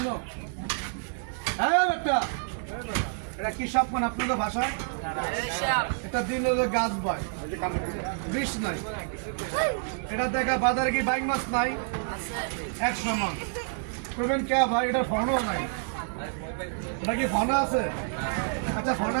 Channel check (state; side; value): silent; left; digital silence